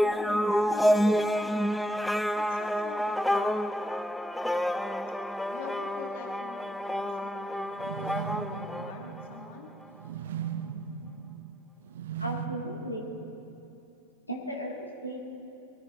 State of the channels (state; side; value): normal; both; correlation 0.79